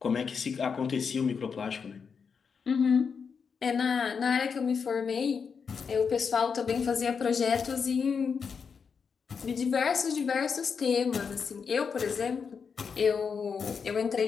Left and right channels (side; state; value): right; quieter; 6.0 dB